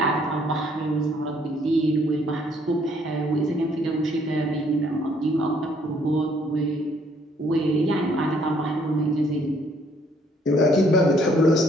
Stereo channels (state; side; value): normal; both; correlation 0.65